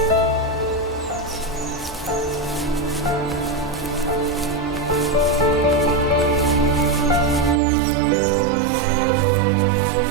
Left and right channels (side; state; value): left; drops out; at 7.6 s